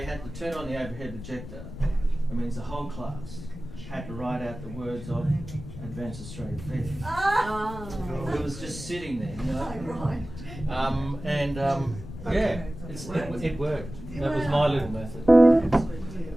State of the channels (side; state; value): left; noise; rumble, 12 dB below the sound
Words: had to turn on the overhead projector, it means the whole class had to write out the words of Advanced Australia Fair. It was just sitting there, you know. Yeah, it worked. That was my little method.